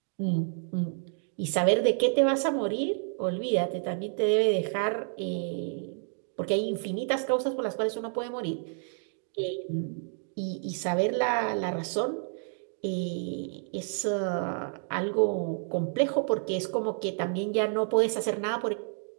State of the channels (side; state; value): left; silent; digital silence